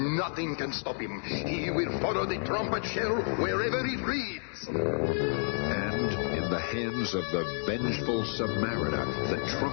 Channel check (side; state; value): right; silent; 58 dB below the other